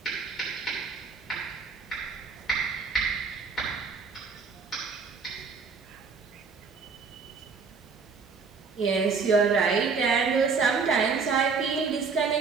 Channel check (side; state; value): left; quieter; 5.2 dB